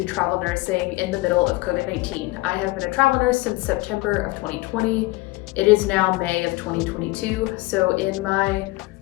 travel nursing in the middle of COVID-19. I have been a travel nurse since September of 2020. It is now May of 2022, so in my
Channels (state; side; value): quieter; right; 21.3 dB